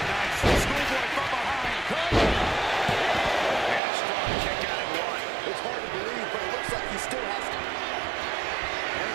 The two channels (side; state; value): left; drops out; at 3.8 s